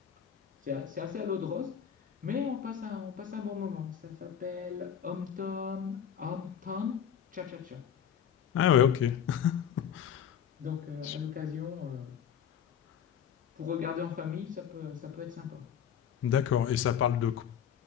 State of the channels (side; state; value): right; quieter; 8.7 dB